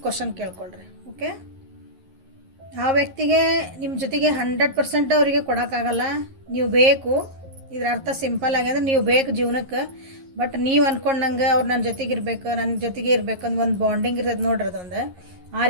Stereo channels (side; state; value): left; late; 11 ms